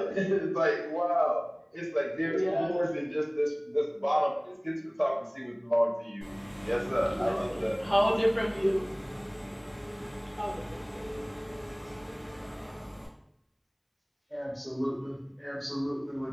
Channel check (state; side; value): identical; both; correlation 1.00